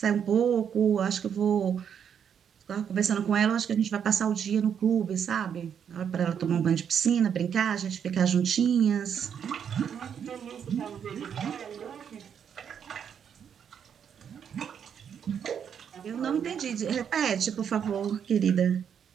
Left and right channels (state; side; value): quieter; left; 8.0 dB